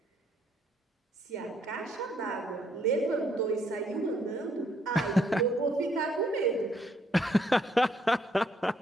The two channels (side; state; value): both; normal; correlation 0.69